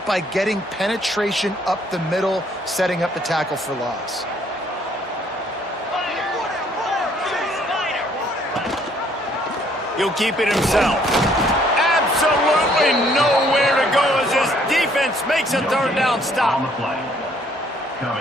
by getting penetration up the middle, setting up the tackle for loss. He'll keep it himself. Absolutely nowhere to go as this defense makes a third down stop. On the play.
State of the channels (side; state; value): both; normal; correlation 0.64